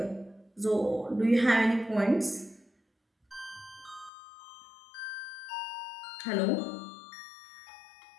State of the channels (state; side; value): drops out; right; at 4.1 s